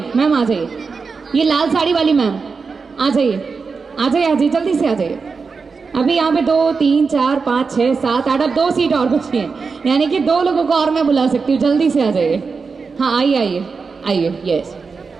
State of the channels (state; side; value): quieter; left; 4.9 dB